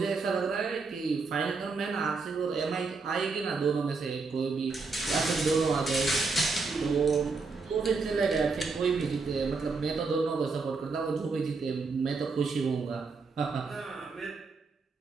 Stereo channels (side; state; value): left; quieter; 4.3 dB